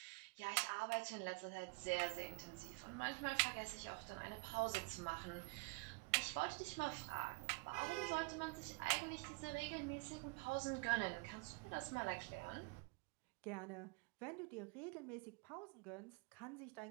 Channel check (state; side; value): quieter; left; 28.4 dB